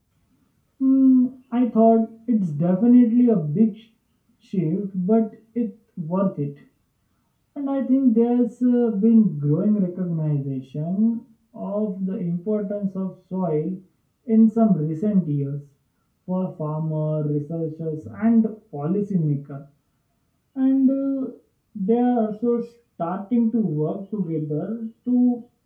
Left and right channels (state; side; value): identical; both; correlation 1.00